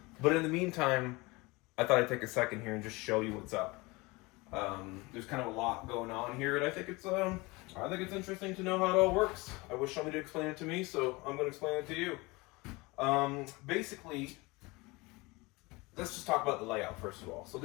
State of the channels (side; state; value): right; quieter; 24.0 dB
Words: But in the meantime, I thought I'd take a second here and just show you what's up. There's kind of a lot going on here, and I think it's interesting to know how it all works. I wish somebody would explain it to me, so I'm going to explain it to you. Basically, let's just talk about the layout first of all. So